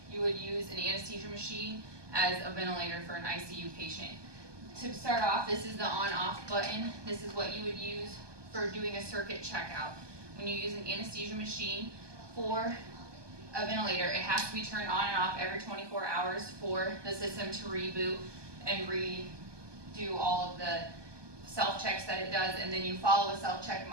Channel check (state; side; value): late; left; 1.2 ms